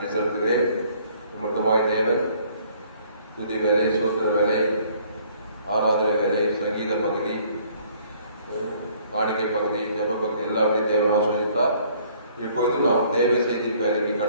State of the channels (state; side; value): inverted; both; correlation -0.60